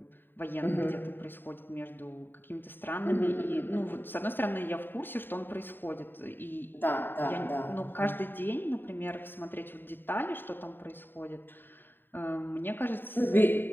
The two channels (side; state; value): right; late; 0.095 ms